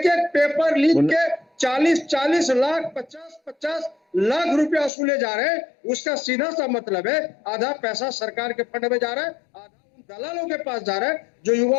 एक पेपर लीक के 40 लाख 50 लाख रुपया वसूले जा रहे हैं। उसका सीधा सा मतलब है आधा पैसा सरकार के फंड में जा रहा है, आधा उन दलालों के पास जा रहा है जो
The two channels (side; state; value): right; drops out; at 4.9 s